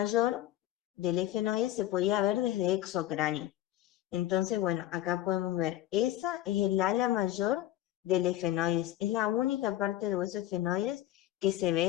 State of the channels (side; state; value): right; quieter; 13.7 dB